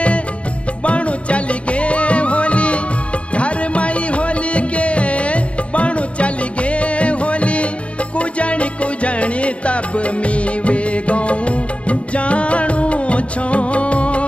बणु चल गे होली घर माई होली के बणु चल गे होली। कुजणी कुजणी तब मी वे गो जानू छो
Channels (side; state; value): right; late; 0.063 ms